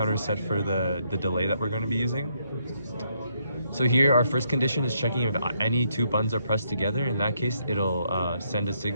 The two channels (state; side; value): inverted; both; correlation -0.74